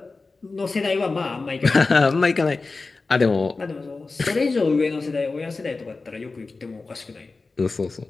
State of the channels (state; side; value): quieter; right; 3.8 dB